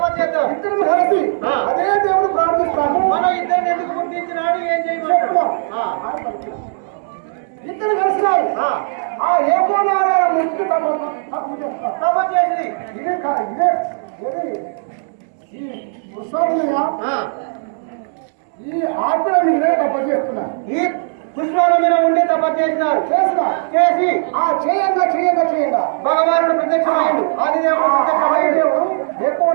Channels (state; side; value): silent; left; 67 dB below the other